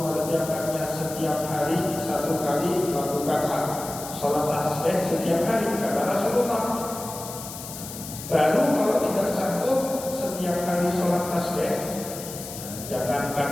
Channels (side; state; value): left; noise; hiss, 11 dB below the sound